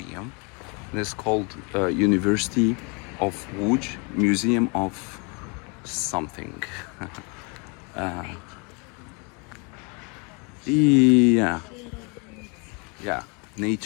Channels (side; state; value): right; quieter; 32.6 dB